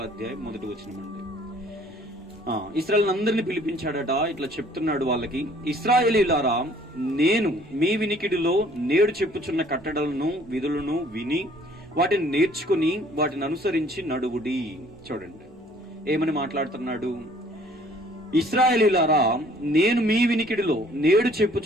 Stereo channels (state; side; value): normal; both; correlation 0.57